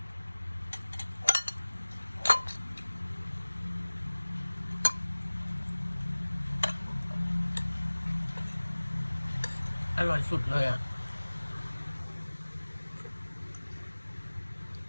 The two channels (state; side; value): inverted; both; correlation -1.00